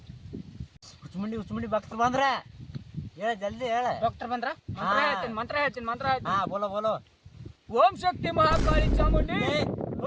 ಹುಚ್ಚಮುಂಡಿ ಭಕ್ತರು ಬಂದ್ರ ಹೇಳ, ಜಲ್ದಿ ಹೇಳ. ಡಾಕ್ಟರ್ ಬಂದ್ರ? ಮಂತ್ರ ಹೇಳ್ತೀನಿ. ಹಾ ಬೋಲೋ. ಓಂ ಶಕ್ತಿ ಮಹಾಕಾಳಿ ಚಾಮುಂಡಿ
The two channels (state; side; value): identical; both; correlation 1.00